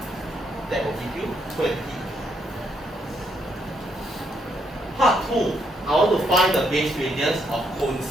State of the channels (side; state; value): both; normal; correlation 0.75